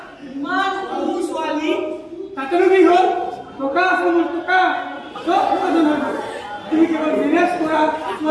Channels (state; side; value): identical; both; correlation 1.00